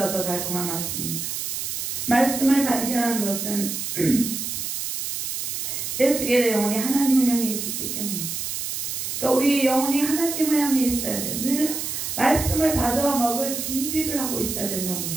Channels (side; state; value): right; noise; hiss, 4 dB below the sound